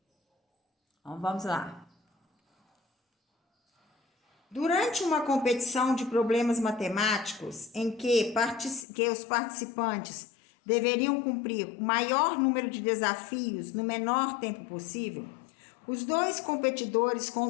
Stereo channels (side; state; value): right; drops out; at 8.8 s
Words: Então, vamos lá. Durante uma competição de problemas matemáticos em que os participantes deveriam cumprir o maior número de desafios no menor tempo possível, os 2 competidores com